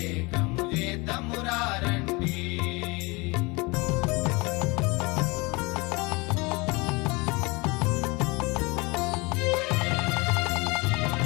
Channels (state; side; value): quieter; right; 26.0 dB